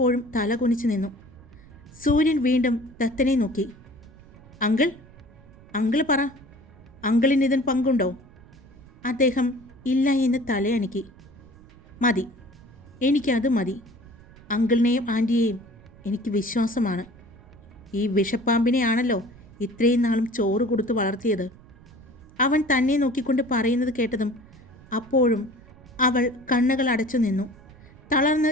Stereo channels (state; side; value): noise; right; rumble, 23 dB below the sound